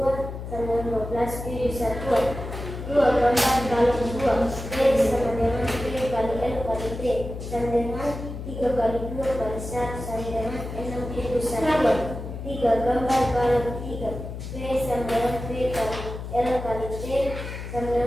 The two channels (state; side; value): noise; left; hum, 8 dB below the sound